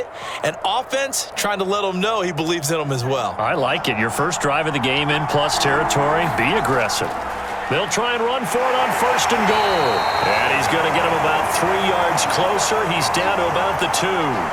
An offense trying to let them know he believes in them as well. I like it. Your first drive of the game in plus territory, be aggressive. They'll try and run for it on 1st and goal. And he's going to get him about 3 yards closer. He's down to about the 2.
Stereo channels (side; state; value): both; identical; correlation 1.00